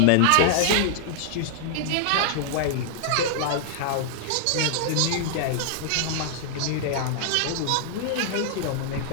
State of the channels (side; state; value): both; different; correlation -0.01